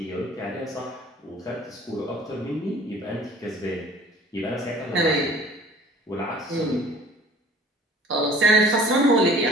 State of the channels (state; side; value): normal; both; correlation 0.49